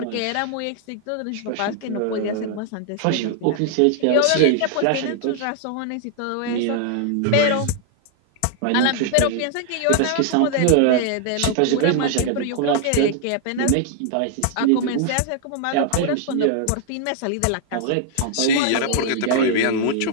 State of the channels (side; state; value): both; different; correlation 0.00